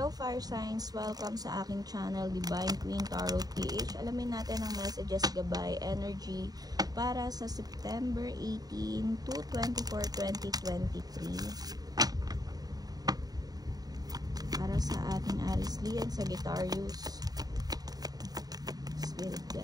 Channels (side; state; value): left; late; 0.18 ms